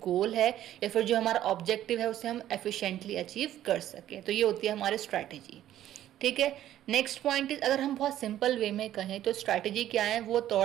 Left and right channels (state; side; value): quieter; left; 12.4 dB